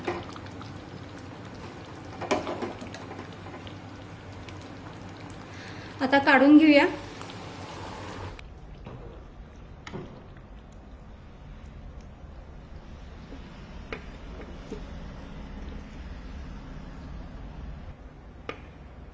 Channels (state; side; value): identical; both; correlation 1.00